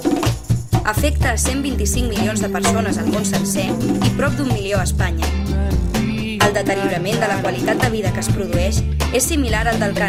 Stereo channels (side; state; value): both; identical; correlation 1.00